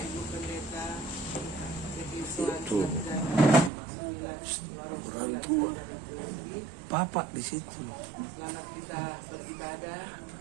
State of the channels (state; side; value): drops out; left; at 3.7 s